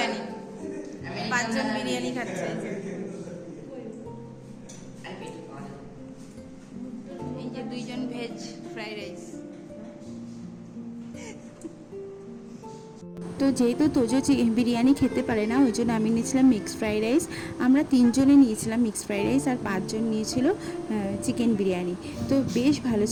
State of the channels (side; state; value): both; identical; correlation 1.00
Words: 5 জন বিরিয়ানি খাচ্ছে। এই যে 2 জন ভেজ ফ্রাইড রাইস। তো যেহেতু তোজো বিরিয়ানি খেতে পারে না, ওই জন্য আমি নিয়েছিলাম মিক্সড ফ্রাইড রাইস। আমরা 3 জনে নিয়েছিলাম মিক্সড ফ্রাইড রাইস, আর 5 জন নিয়েছিল চিকেন বিরিয়ানি। তো বেশ ভালো